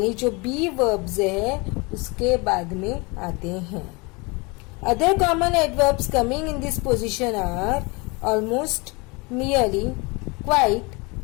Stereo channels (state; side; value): quieter; right; 27.4 dB